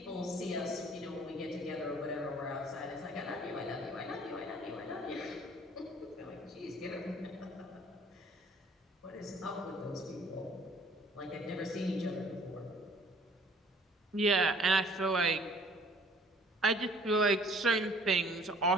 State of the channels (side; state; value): both; normal; correlation 0.55